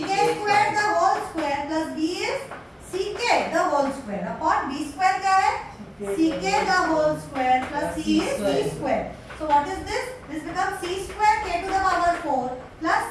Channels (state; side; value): identical; both; correlation 1.00